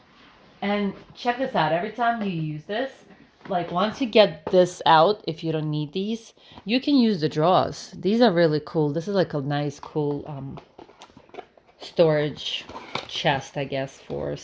And check this out. Every time you use this, like once you get this out, if you don't need these, you can use the drawers. These are really cool. This is like a nice, cool storage chest, I guess, for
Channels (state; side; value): identical; both; correlation 1.00